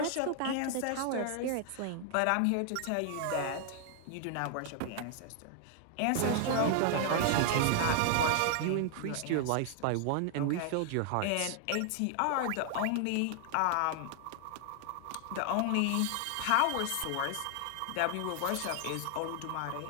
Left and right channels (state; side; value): different; both; correlation 0.00